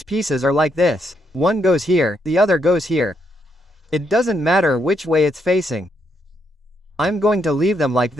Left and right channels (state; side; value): normal; both; correlation 0.77